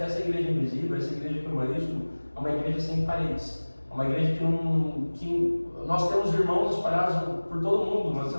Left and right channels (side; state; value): both; inverted; correlation -1.00